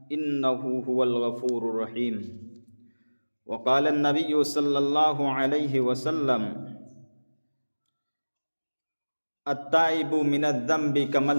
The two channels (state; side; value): inverted; both; correlation -1.00